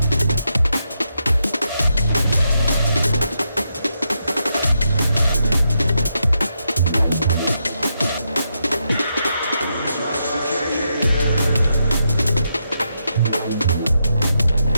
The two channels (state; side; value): inverted; both; correlation -0.82